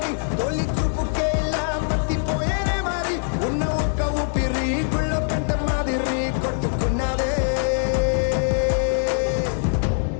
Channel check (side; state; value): right; silent; 64 dB below the other